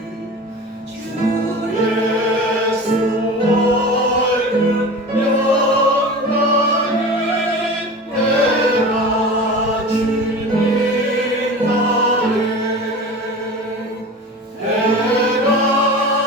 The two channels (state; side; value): normal; both; correlation 0.34